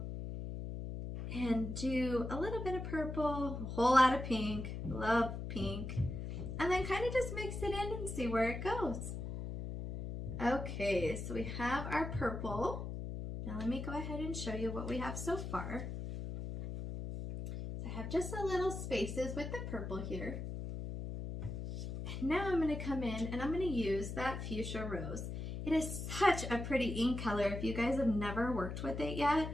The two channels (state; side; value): noise; left; hum, 5 dB below the sound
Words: and do a little bit of purple, a whole lot of pink, love pink, and then kind of just mix it in and see where it goes. Okay, so we have our purple. Now let me go ahead and show you what we have so far. I have just a little spaces with the purple here. And now I'm going to come in and I'm going to use that fuchsia rose. It is such a pretty ink color. If you guys have never worked with it yet,